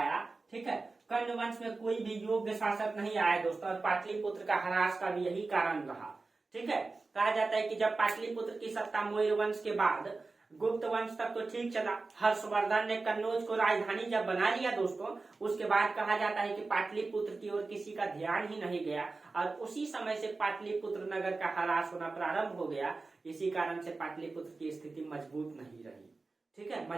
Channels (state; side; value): quieter; left; 3.7 dB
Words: ठीक है, कर्ण वंश में कोई भी योग्य शासक नहीं आया दोस्तों, और पाटलिपुत्र का ह्रास का भी यही कारण रहा। ठीक है, कहा जाता है कि जब पाटलिपुत्र की सत्ता मौर्य वंश के बाद गुप्त वंश तक तो ठीक चला, हर्षवर्धन ने कन्नौज को राजधानी जब बना लिया दोस्तों, उसके बाद कहा जाता है कि पाटलिपुत्र की ओर किसी का ध्यान ही नहीं गया, और उसी समय से पाटलिपुत्र नगर का ह्रास होना प्रारंभ हो गया। इसी कारण से पाटलिपुत्र की स्थिति मजबूत नहीं रही। ठीक है,